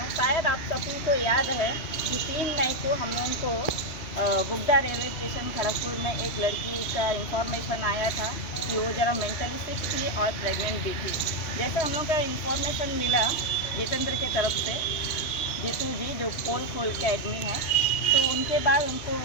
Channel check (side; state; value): right; late; 3.1 ms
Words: शायद आप सभी को याद है कि 3 मई को हम लोगों को बुगदा रेलवे स्टेशन खड़गपुर में एक लड़की का इंफॉर्मेशन आया था कि वो ज़रा मेंटली सिक थी और प्रेग्नेंट भी थी। जैसे हम लोग का इंफॉर्मेशन मिला जितेंद्र के तरफ से, जीतू जी जो पोल खोल के एडमिन है, तो उनके बाद उनको